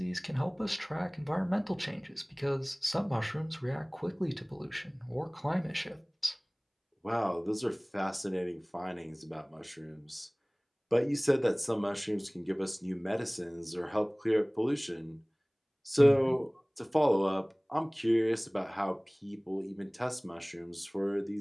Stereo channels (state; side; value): identical; both; correlation 1.00